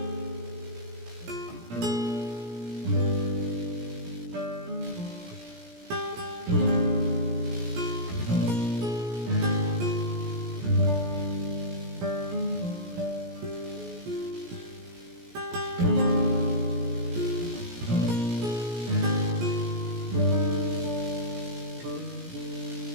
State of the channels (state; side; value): late; left; 17 ms